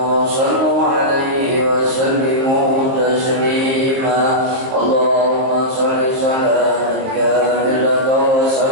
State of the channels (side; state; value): left; late; 23 ms